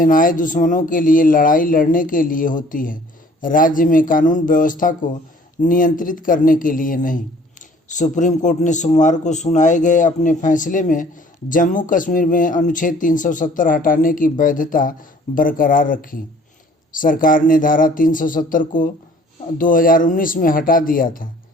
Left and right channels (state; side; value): normal; both; correlation 0.54